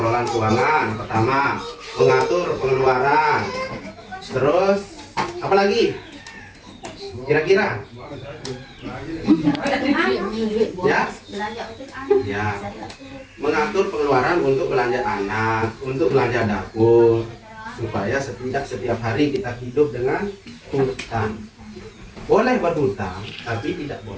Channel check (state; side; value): identical; both; correlation 1.00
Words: keuangan. Pertama, mengatur pengeluaran. Terus, apa lagi? Kira-kira? Ya? Ya. Mengatur pengeluaran untuk belanja anak, untuk belanja dapur, supaya setiap hari kita hidup dengan hutang. Boleh berhutang, tapi tidak